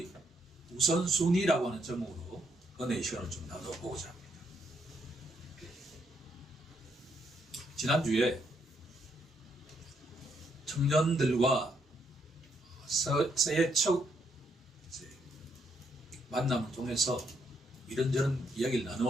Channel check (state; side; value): normal; both; correlation 0.75